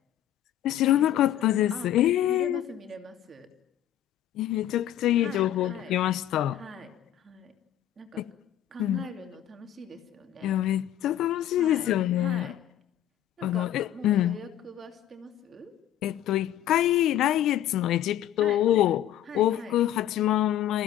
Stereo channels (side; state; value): right; quieter; 11.8 dB